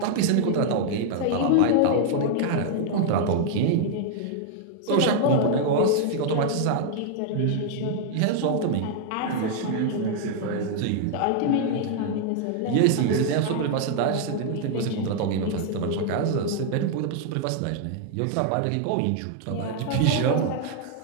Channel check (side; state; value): both; different; correlation 0.00